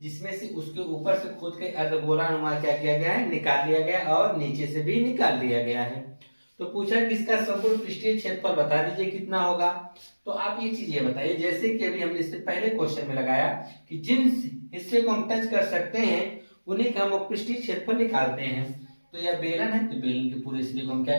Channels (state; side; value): inverted; both; correlation -1.00